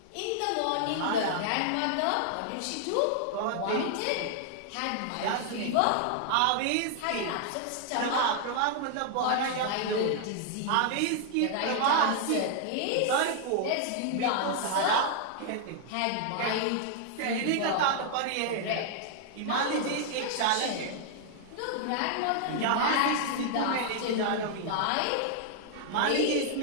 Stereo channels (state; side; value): different; both; correlation 0.00